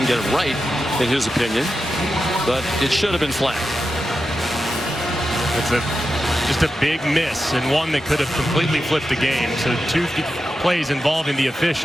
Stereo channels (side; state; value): both; normal; correlation 0.90